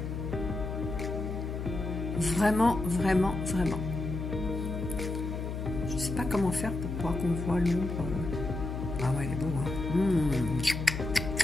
Vraiment. Je ne sais pas comment faire pour pouvoir qu'on voit l'ombre. Ah ouais, il est beau, hein.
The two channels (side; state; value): left; noise; hum, 4 dB below the sound